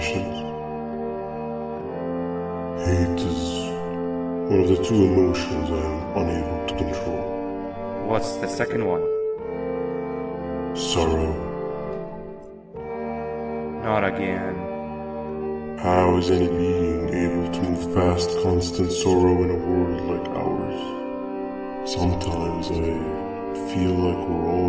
Hate is one of the two emotions I am unable to control. What's the second one? Sorrow. Not again. How is any being able to move past constant sorrow in a world like ours? Sometimes I feel like we're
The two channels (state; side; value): identical; both; correlation 1.00